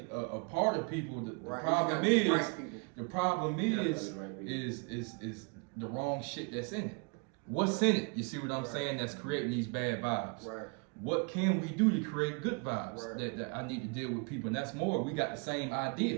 a part of people. The problem is the wrong shit that's in it. What's in it? You see what I'm saying? That's creating these bad vibes. Right. What can we do to create good vibes? That I need to deal with people, and that's more. We got the same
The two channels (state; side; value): quieter; left; 33.7 dB